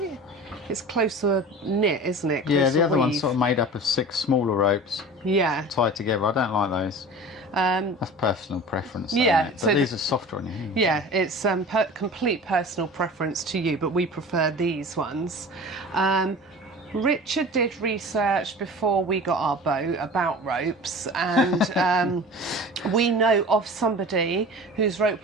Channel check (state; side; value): normal; both; correlation 0.38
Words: It's closer knit, isn't it? Yeah, Closer the other one's weave. sort of made up of 6 smaller ropes Yeah. tied together. I don't like those. That's personal preference. Though, yeah, isn't it? But so these are softer on you. Yeah, it's complete personal preference to you, but we prefer these ones. Richard did research before we got our boat about ropes, and we know of somebody whose rope